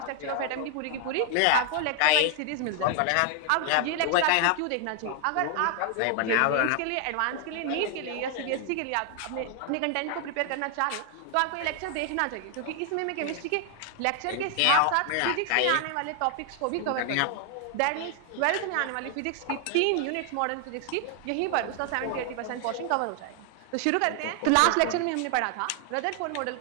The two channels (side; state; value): both; different; correlation 0.00